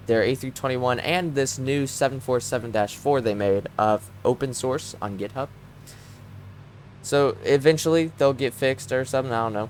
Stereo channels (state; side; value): identical; both; correlation 1.00